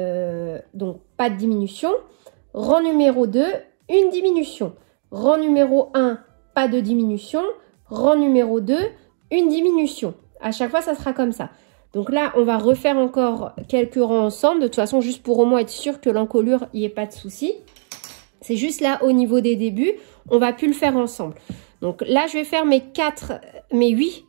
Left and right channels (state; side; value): silent; left; 66 dB below the other